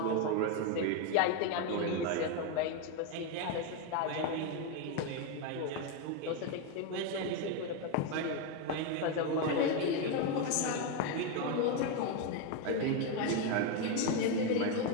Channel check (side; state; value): both; different; correlation 0.03